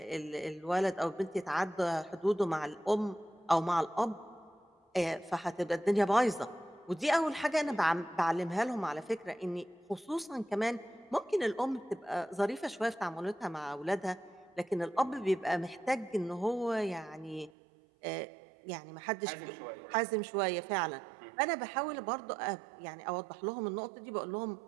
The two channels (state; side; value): drops out; left; at 17.5 s